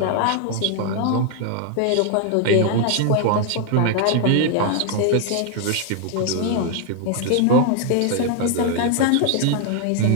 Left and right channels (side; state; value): both; different; correlation 0.00